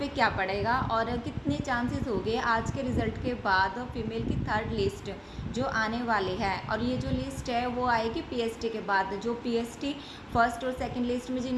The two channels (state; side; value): identical; both; correlation 1.00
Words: क्या पड़ेगा और कितने चांसेस हो गए आज के रिज़ल्ट के बाद फीमेल की थर्ड लिस्ट जो आने वाली है। और ये जो लिस्ट है वो आएगी पीएसटी के बाद। जो पीएसटी फर्स्ट और सेकंड लिस्ट में जिन